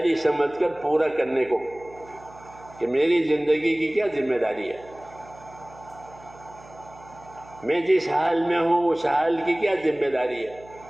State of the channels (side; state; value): right; noise; hum, 22 dB below the sound